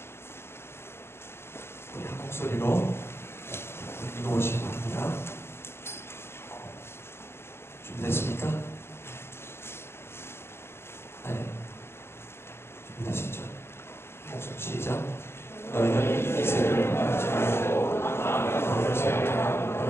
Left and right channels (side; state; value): right; late; 0.12 ms